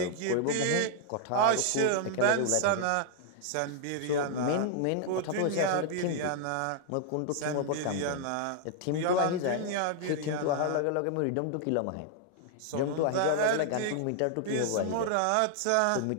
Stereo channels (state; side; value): different; both; correlation 0.00